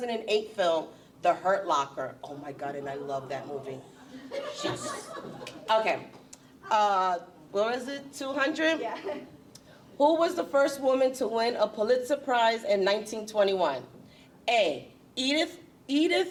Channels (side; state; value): both; identical; correlation 1.00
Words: film, The Hurt Locker. Oh my God, and I love that movie. Okay. What was it, 200? Yeah. Who was the first woman to win a Pulitzer Prize in 1921? A, Edith